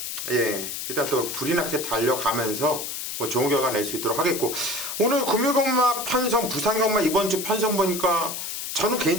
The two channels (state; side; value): noise; left; hiss, 5 dB below the sound